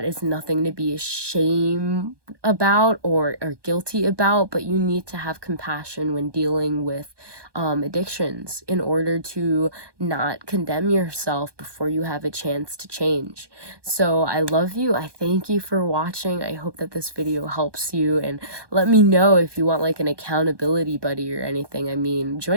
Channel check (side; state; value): left; late; 1.2 ms